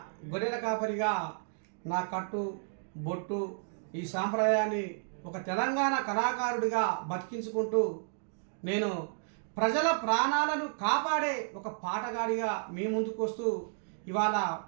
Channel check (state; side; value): silent; left; digital silence